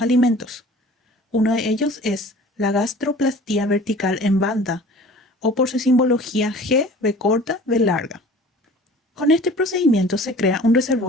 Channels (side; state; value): both; normal; correlation 0.45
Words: Uno de ellos es la gastroplastía vertical en banda, o por su simbología G, B corta, B larga. Con este procedimiento se crea un